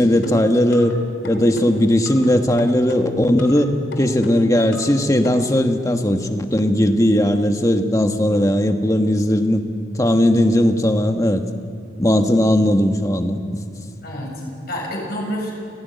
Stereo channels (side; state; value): both; normal; correlation 0.85